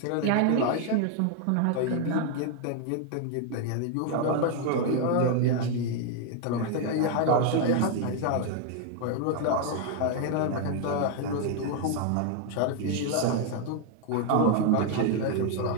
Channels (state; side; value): different; both; correlation 0.00